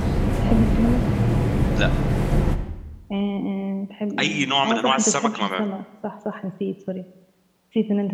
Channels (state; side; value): identical; both; correlation 1.00